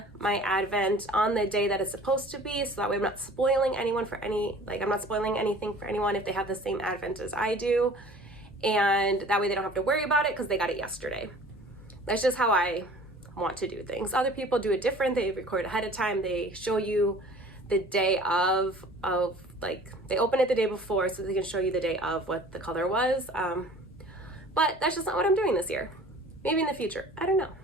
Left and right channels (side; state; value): both; normal; correlation 0.47